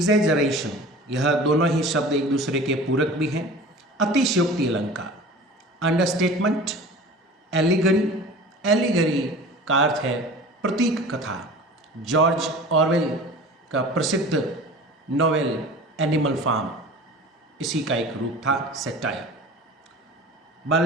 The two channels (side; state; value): both; normal; correlation 0.40